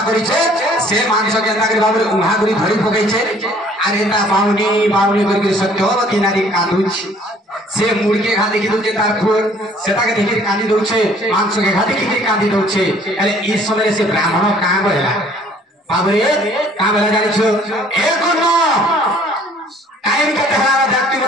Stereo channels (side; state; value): both; normal; correlation 0.56